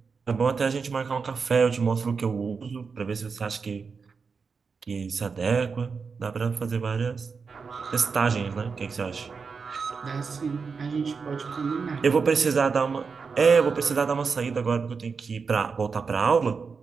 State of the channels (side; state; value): left; quieter; 5.2 dB